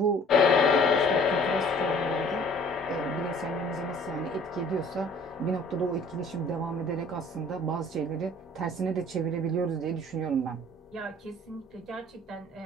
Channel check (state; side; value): normal; both; correlation 0.53